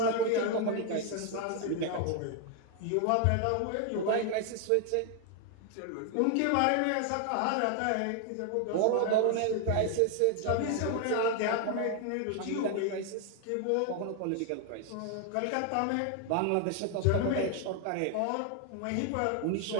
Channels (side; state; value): both; different; correlation 0.00